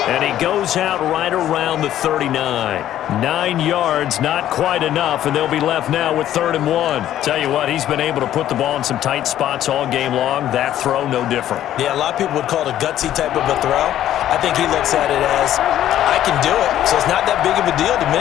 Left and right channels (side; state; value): right; quieter; 12.1 dB